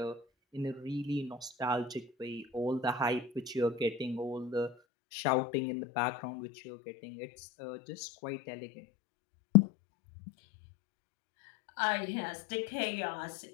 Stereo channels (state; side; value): drops out; right; at 4.8 s